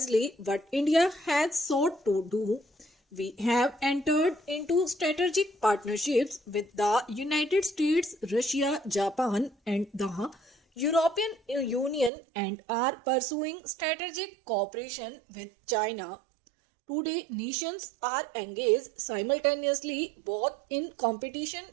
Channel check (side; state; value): left; drops out; at 12.1 s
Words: what India has sought to do. We have entered into strategic partnerships with the United States, Russia, Japan, and the European Union, and are pursuing strategic cooperation with China. Today, nations are engaged simultaneously both in competition